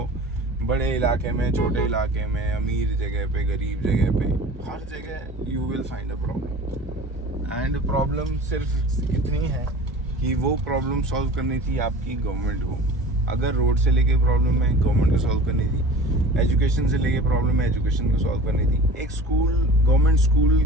बड़े इलाके में, छोटे इलाके में, अमीर जगह पे, गरीब जगह पे, हर जगह you will find a problem. And problem सिर्फ इतनी है कि वो प्रॉब्लम सॉल्व करनी थी आपकी गवर्नमेंट को। अगर रोड से लेके प्रॉब्लम है, गवर्नमेंट को सॉल्व करनी थी। एजुकेशन से लेके प्रॉब्लम है, एजुकेशन को सॉल्व करनी थी। एक स्कूल, गवर्नमेंट स्कूल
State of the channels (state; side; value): normal; both; correlation 0.41